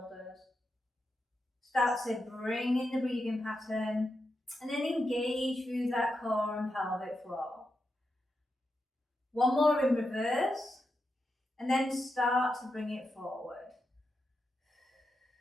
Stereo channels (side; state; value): both; normal; correlation 0.87